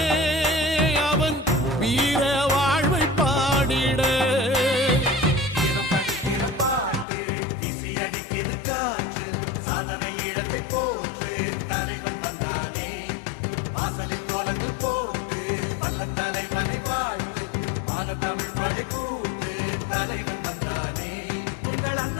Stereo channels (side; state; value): right; drops out; at 7.1 s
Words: அவன் வீர வாழ்வை பாடிட